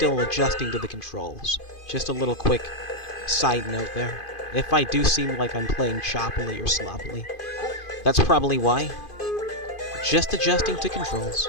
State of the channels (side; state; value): right; late; 2.5 ms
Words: adjusting to the controls. Just a little quick side note there. If I do seem like I'm playing choppily or sloppily, that's probably why. Just adjusting to controls.